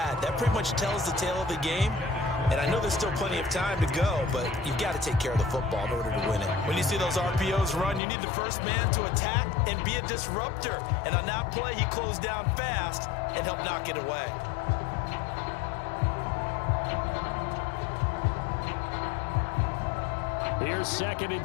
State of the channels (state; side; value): drops out; right; at 8.0 s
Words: that pretty much tells the tale of the game. And I know there's still plenty of time to go, but you've got to take care of the football in order to win it. When you see those RPOs run, you need the first man to attack and be a disruptor. And on that play, he closed down fast and helped knock it away. Here's 2nd and